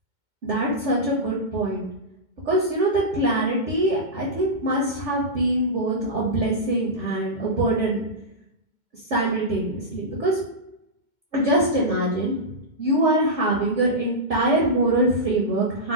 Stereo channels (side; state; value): left; late; 2.1 ms